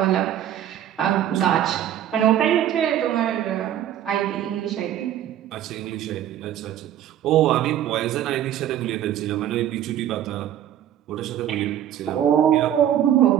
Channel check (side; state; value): left; quieter; 11.1 dB